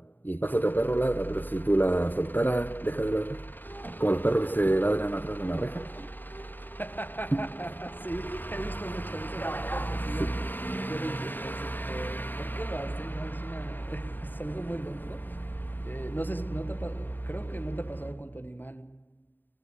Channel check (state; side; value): late; right; 0.091 ms